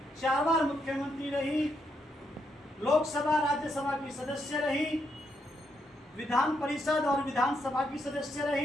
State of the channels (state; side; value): normal; both; correlation 0.79